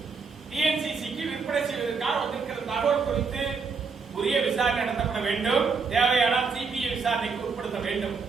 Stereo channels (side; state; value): left; quieter; 5.0 dB